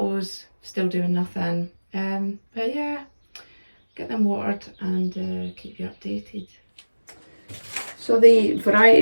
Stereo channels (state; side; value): inverted; both; correlation -1.00